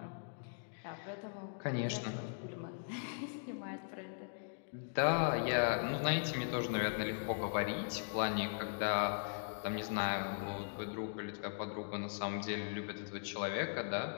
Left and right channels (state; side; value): silent; right; digital silence